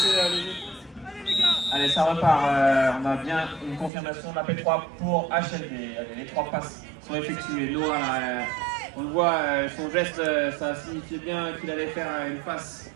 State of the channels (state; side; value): drops out; left; at 3.9 s